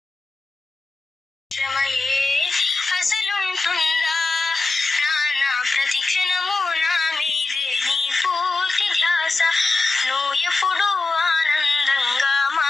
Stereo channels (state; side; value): quieter; right; 3.5 dB